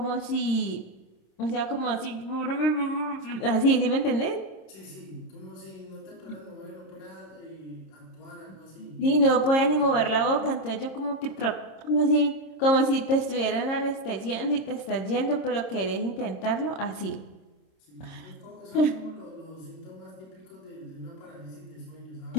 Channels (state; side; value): late; right; 26 ms